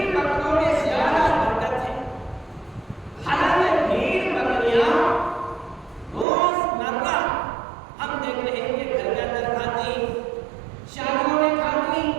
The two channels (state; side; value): drops out; left; at 6.2 s